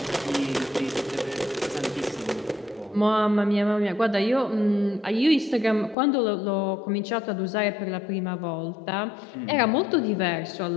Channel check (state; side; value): drops out; right; at 6.0 s